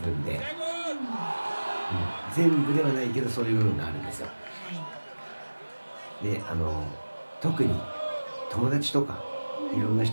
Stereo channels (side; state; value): both; inverted; correlation -1.00